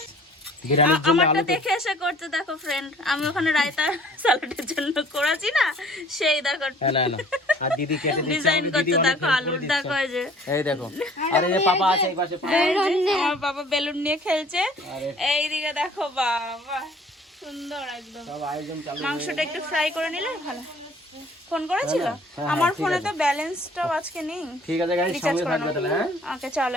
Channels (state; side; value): normal; both; correlation 0.53